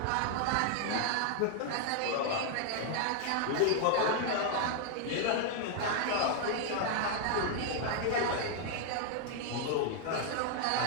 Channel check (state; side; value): different; both; correlation 0.00